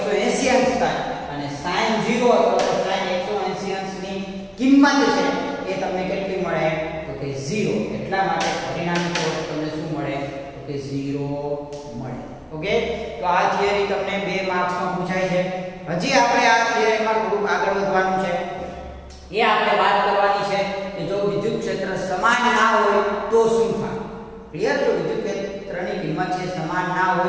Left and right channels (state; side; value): identical; both; correlation 1.00